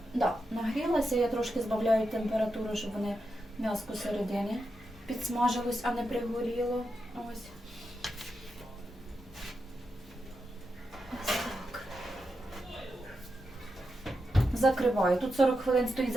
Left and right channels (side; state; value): both; normal; correlation 0.87